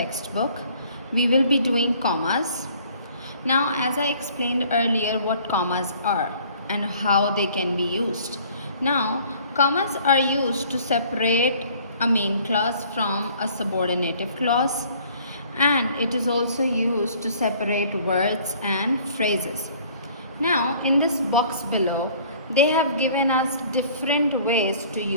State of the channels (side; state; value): both; inverted; correlation -0.55